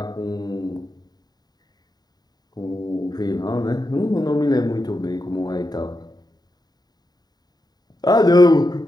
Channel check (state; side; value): late; right; 0.20 ms